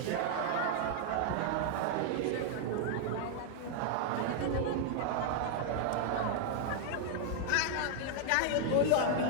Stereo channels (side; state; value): both; different; correlation 0.00